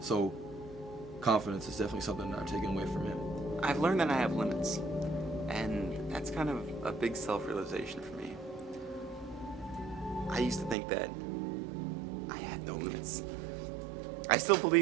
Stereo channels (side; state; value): left; drops out; at 10.8 s